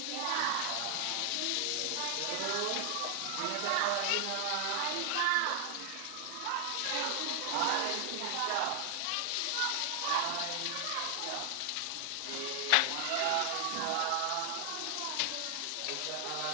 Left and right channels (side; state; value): both; different; correlation 0.00